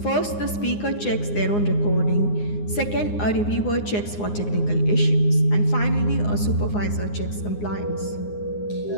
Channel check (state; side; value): late; right; 9.7 ms